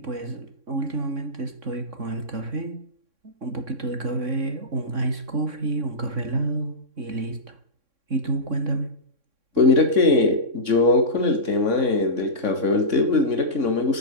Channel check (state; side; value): late; left; 3.6 ms